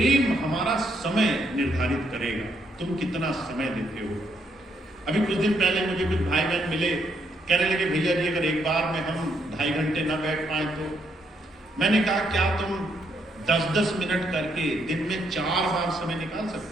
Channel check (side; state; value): both; normal; correlation 0.74